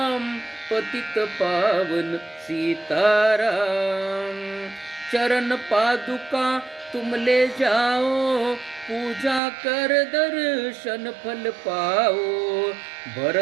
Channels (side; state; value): left; drops out; at 9.4 s